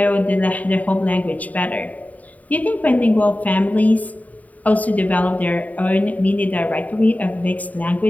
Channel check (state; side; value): late; right; 0.073 ms